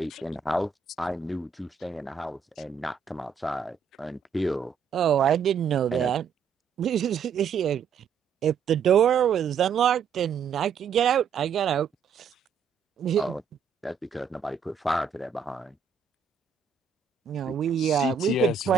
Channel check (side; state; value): left; quieter; 6.5 dB